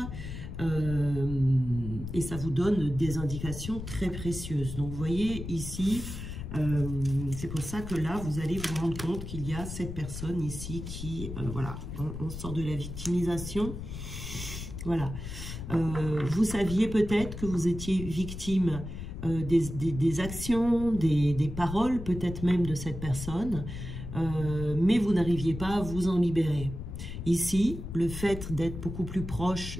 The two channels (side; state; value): left; noise; rumble, 8 dB below the sound